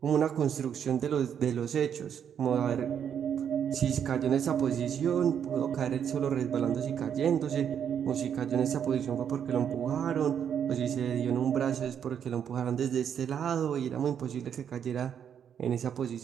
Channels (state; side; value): quieter; left; 8.4 dB